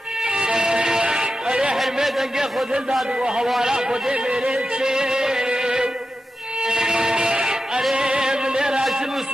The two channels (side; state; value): both; normal; correlation 0.91